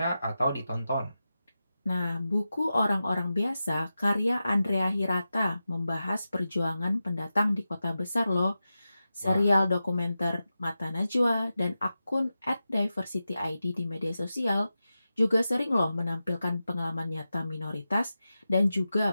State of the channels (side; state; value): both; inverted; correlation -0.92